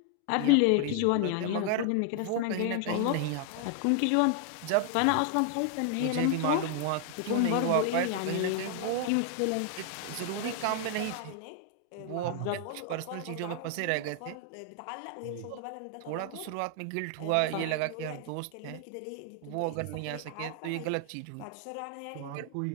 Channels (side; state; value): both; different; correlation 0.00